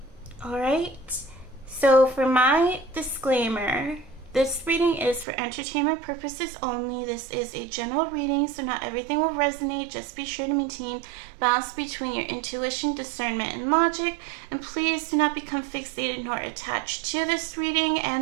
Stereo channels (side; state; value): left; drops out; at 5.2 s